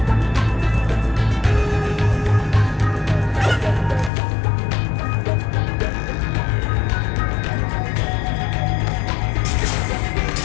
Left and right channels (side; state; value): right; drops out; at 4.1 s